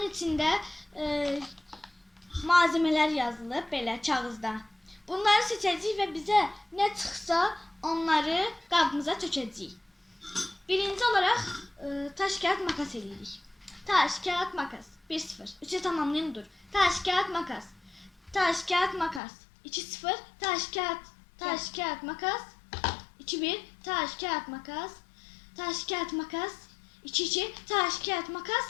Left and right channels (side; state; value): right; drops out; at 19.2 s